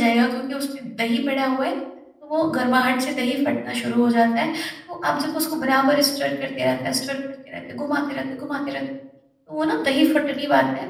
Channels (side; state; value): both; identical; correlation 1.00